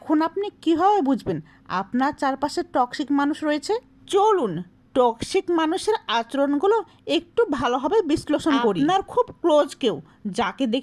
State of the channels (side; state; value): both; identical; correlation 1.00